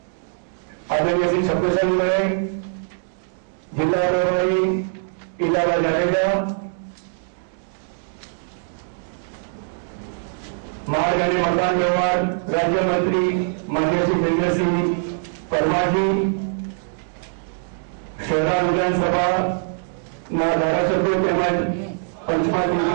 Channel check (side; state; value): left; silent; digital silence